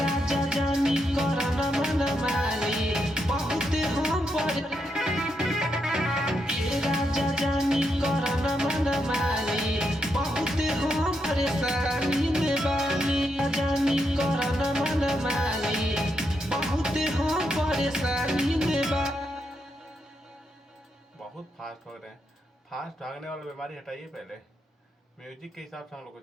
जानी करन मन मानी बहुते हम ए राजा जानी करन मन मानी बहुते हम परेशानी में बानी। जानी करन मन मानी बहुते हम परेशानी में बानी। बहुत फास्ट भाग रहे हैं। फास्ट भागने वाला बीमारी हटाइए पहले, म्यूजिक के हिसाब से हम लोग को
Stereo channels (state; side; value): normal; both; correlation 0.82